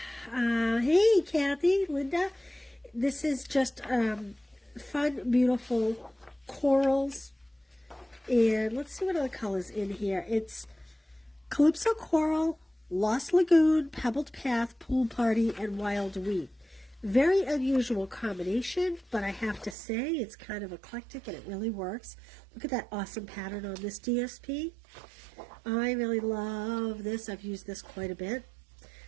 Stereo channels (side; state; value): left; drops out; at 19.8 s